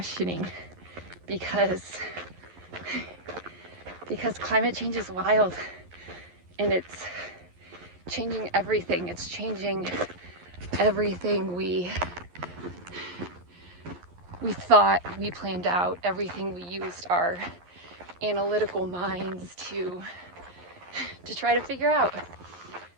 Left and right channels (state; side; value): late; left; 11 ms